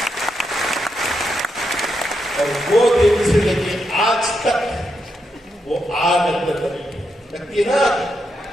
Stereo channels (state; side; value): normal; both; correlation 0.83